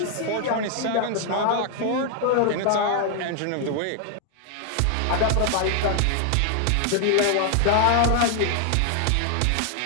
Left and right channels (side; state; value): both; different; correlation 0.00